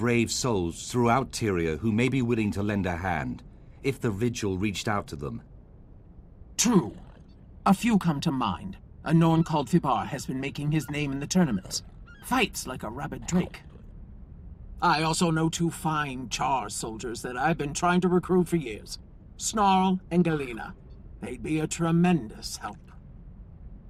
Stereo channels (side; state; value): both; identical; correlation 1.00